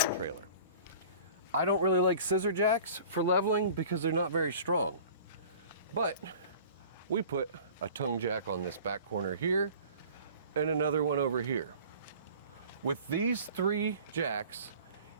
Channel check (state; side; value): inverted; both; correlation -0.45